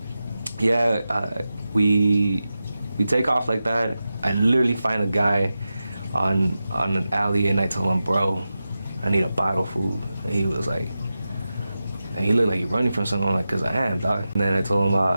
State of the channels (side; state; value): both; inverted; correlation -0.92